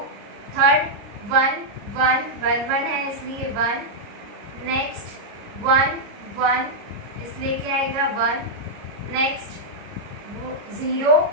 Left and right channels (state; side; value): late; left; 29 ms